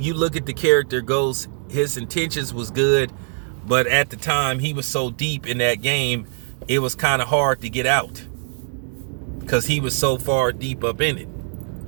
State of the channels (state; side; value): silent; left; digital silence